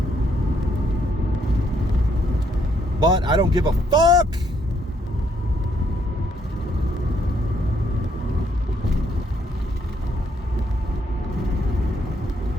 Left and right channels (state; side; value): normal; both; correlation 0.71